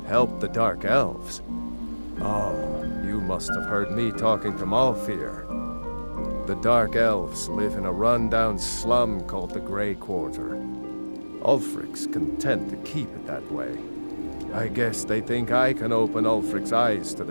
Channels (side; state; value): both; inverted; correlation -1.00